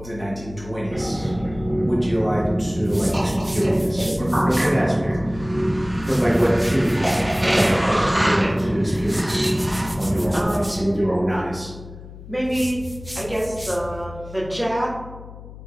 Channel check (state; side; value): noise; left; hum, 15 dB below the sound